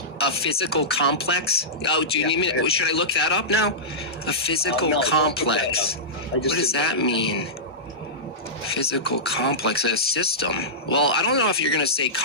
A physical complex? Oh, do you need me? Should I look that up now? A physical complex. What does that mean? Physical complex, a system. Well, I don't know if you're going to say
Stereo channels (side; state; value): both; normal; correlation -0.16